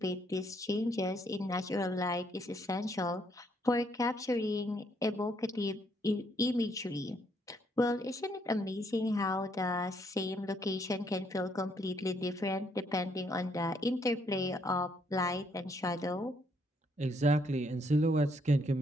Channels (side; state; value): both; normal; correlation 0.71